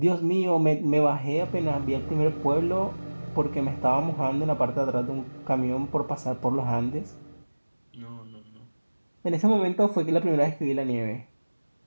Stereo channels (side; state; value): both; inverted; correlation -1.00